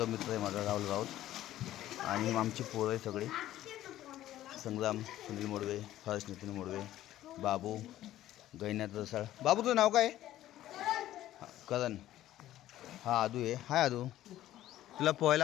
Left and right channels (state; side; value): quieter; right; 13.7 dB